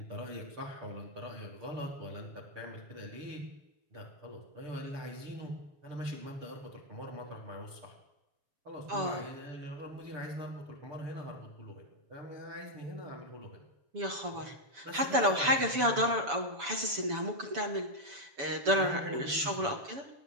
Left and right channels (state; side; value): late; left; 7.0 ms